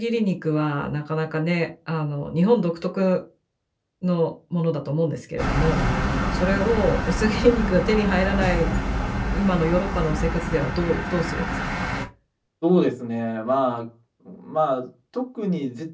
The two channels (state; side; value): identical; both; correlation 1.00